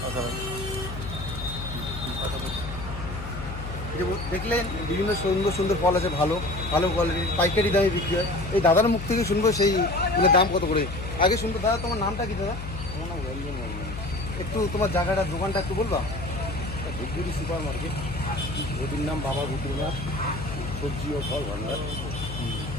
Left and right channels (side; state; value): left; noise; hum, 8 dB below the sound